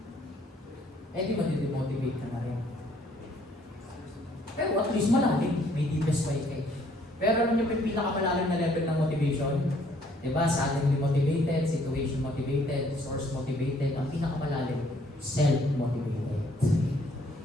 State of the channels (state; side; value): normal; both; correlation 0.64